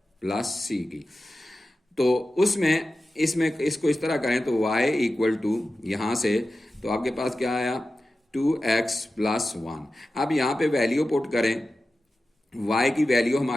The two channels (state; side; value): normal; both; correlation 0.93